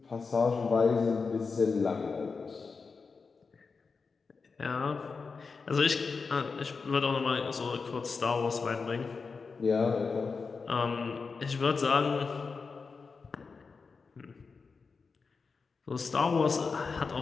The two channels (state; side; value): quieter; right; 4.8 dB